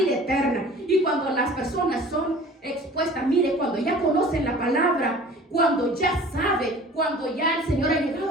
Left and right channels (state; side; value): normal; both; correlation 0.45